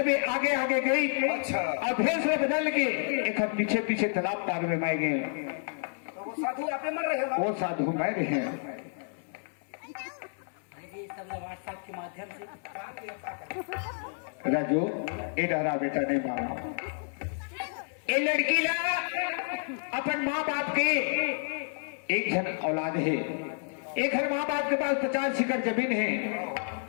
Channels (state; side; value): silent; right; 58 dB below the other